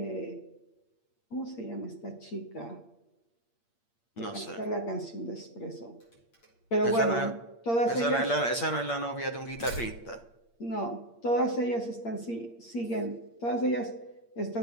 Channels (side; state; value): right; late; 8.6 ms